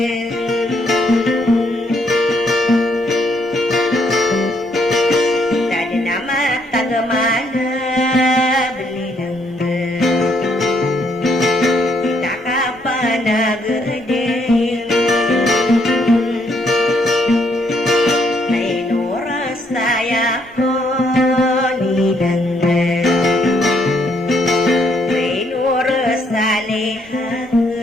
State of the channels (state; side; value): normal; both; correlation 0.71